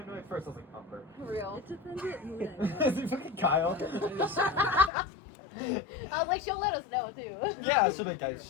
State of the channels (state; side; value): drops out; right; at 4.9 s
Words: annoyed first? I was like, Umber. For real. It depends what mood I'm Is it fucking Kyle? I was like, she'll let us know, too. Yeah, so like, guys,